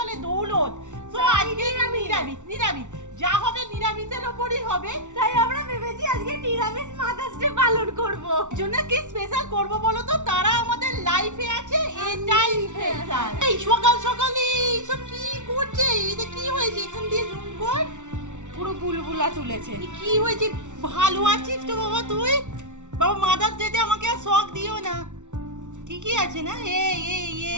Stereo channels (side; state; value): left; late; 0.85 ms